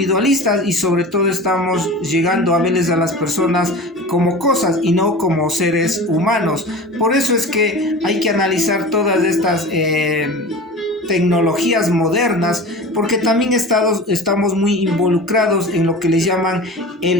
y sobre todo estamos llegando a verles a las personas como cosas y no como seres humanos. Por eso es que hay que analizar todas estas tecnologías modernas, porque también estamos muy involucrados en lo que les llaman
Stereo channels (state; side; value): normal; both; correlation 0.35